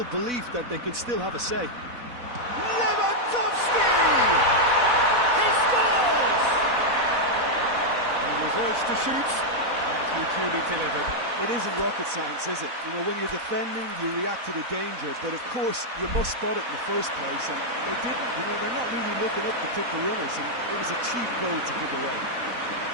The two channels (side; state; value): left; late; 4.1 ms